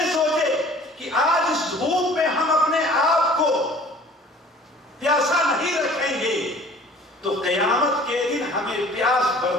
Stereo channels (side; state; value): both; normal; correlation 0.49